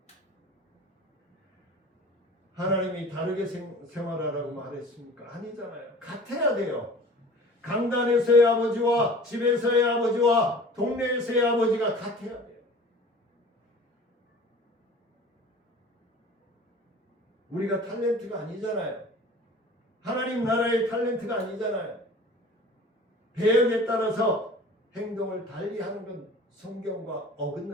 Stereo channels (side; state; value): both; normal; correlation 0.43